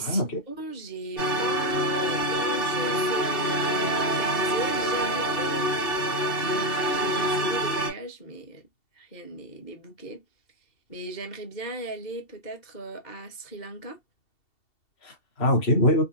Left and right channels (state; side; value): late; right; 2.7 ms